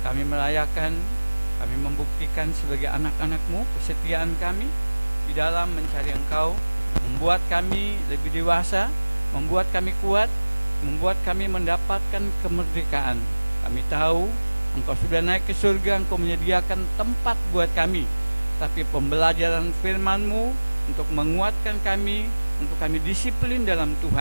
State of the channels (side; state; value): both; inverted; correlation -1.00